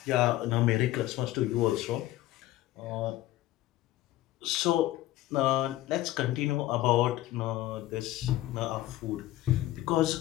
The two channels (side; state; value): right; quieter; 15.2 dB